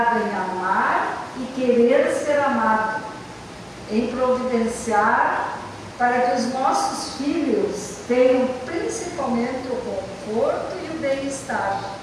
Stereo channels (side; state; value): both; identical; correlation 1.00